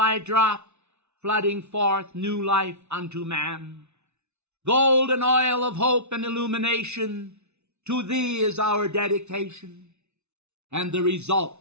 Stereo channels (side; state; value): left; late; 0.81 ms